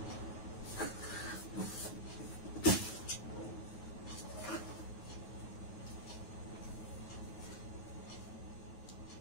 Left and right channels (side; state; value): right; late; 9.4 ms